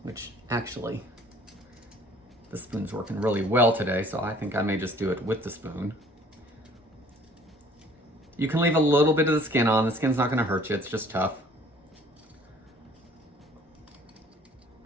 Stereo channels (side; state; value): both; normal; correlation 0.55